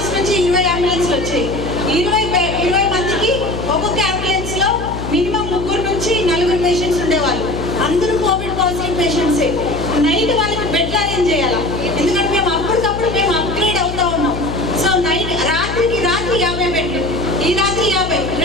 నుంచి 20 అంబులెన్స్లు వచ్చాయి. 20 మందికి ఒక్కొక్క అంబులెన్స్లో మినిమం 3 నుంచి 4 పేషెంట్స్ ఉండేవాళ్ళు. అందరూ కోవిడ్ పాజిటివ్ పేషెంట్సే. నైట్ వాళ్ళకి బెడ్లు అరేంజ్ చేయాలా, ఎందుకంటే మేము అప్పటికప్పుడు అప్గ్రేడ్ అవుతా ఉన్నాం. సో రాత్రికి 50 బెడ్లు, ఈ రాత్రి 50,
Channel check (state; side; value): noise; left; hum, 8 dB below the sound